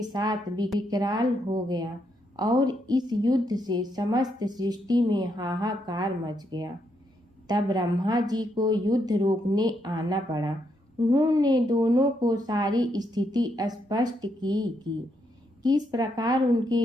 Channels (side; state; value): both; normal; correlation 0.78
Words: साथ विकराल हो गया और इस युद्ध से समस्त सृष्टि में हाहाकार मच गया। तब ब्रह्मा जी को युद्ध रोकने आना पड़ा। उन्होंने दोनों को सारी स्थिति स्पष्ट की कि किस प्रकार उनके